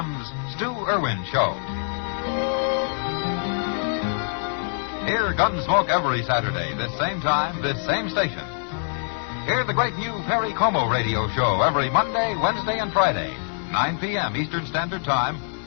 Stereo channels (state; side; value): silent; right; digital silence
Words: Stu Irwin Show. Hear Gunsmoke every Saturday, this same time, this same station. Hear the great new Perry Como radio show every Monday, Wednesday, and Friday, 9 p.m. Eastern Standard Time,